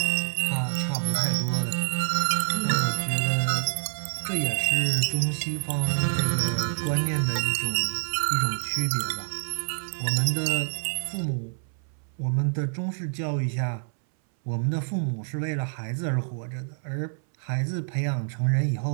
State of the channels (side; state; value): left; silent; 60 dB below the other